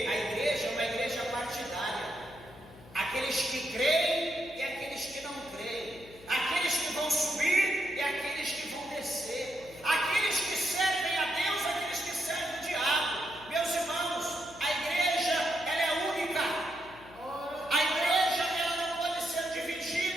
a igreja é uma igreja partidária. Aqueles que creem e aqueles que não creem. Aqueles que vão subir e aqueles que vão descer. Aqueles que servem a Deus e aqueles que servem o diabo. Meus irmãos, a igreja, ela é única. A igreja, ela não pode ser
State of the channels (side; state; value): left; noise; hum, 20 dB below the sound